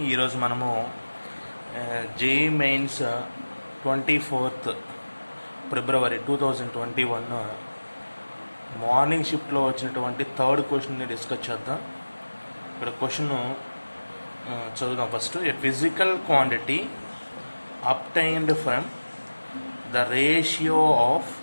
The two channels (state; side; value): inverted; both; correlation -1.00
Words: ఈరోజు మనము జేఈ మెయిన్స్ 24th ఫిబ్రవరి 2021 మార్నింగ్ షిఫ్ట్లో వచ్చినటువంటి థర్డ్ క్వశ్చన్ని డిస్కస్ చేద్దాం. ఇక్కడ క్వశ్చన్ చదువుదాం. First, A physical quantity obtained from the ratio of